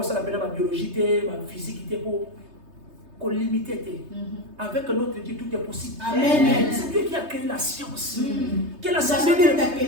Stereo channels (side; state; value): left; late; 3.3 ms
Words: pena ba biologie te ba physique te po qu'on limité. Avec notre Dieu, tout est possible. C'est Dieu qui a créé la science. Que la science